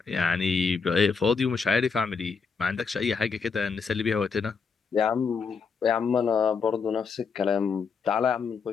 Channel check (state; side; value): quieter; right; 5.4 dB